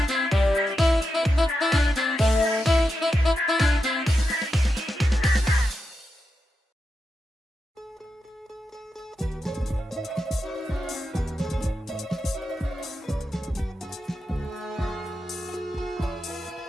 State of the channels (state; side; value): normal; both; correlation 0.88